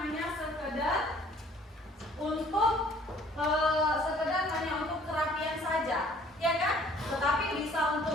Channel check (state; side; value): normal; both; correlation 0.56